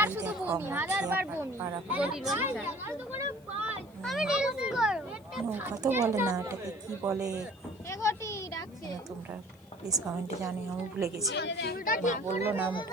এই দেখো আমরা পাড়াপাড়ি নৌকা তো বলে না, এটাকে কি বলে তোমরা প্লিজ কমেন্টে জানিও, আমি ভুলে গেছি। মা বললো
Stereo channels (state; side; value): noise; left; hiss, 30 dB below the sound